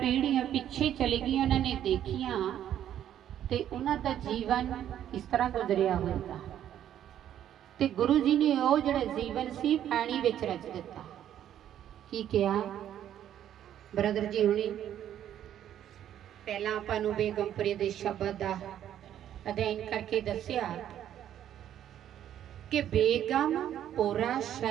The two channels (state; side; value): quieter; left; 10.8 dB